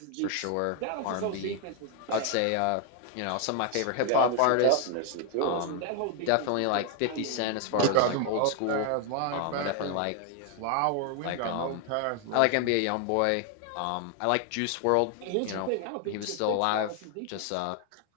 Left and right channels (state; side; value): different; both; correlation 0.00